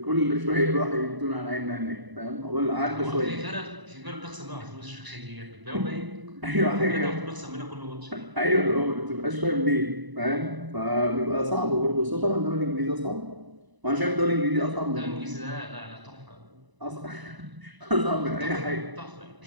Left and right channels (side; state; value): left; late; 1.0 ms